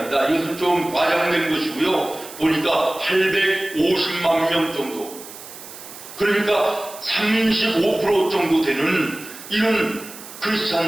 이것은 좀 과장된 것이고요. 보니까 850만 명 정도. 그러니까 35% 정도 되는 이런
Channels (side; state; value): right; noise; hiss, 15 dB below the sound